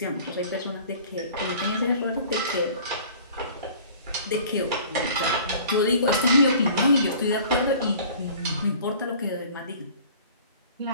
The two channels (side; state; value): both; inverted; correlation -0.47